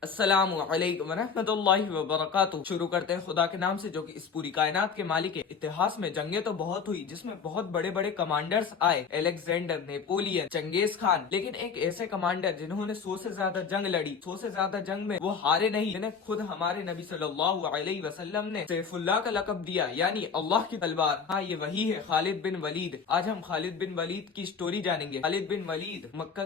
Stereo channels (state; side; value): quieter; right; 6.0 dB